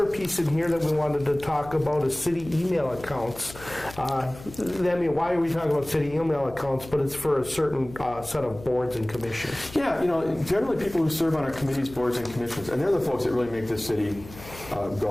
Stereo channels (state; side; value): noise; left; hum, 17 dB below the sound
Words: piece in here that we wanted to talk about is city email accounts. I mean, why are we talking about city email accounts? But it's for a certain set of boards and commissions. Yeah, generally people who serve on our committees, boards, and commissions, and they're the folks that really make this city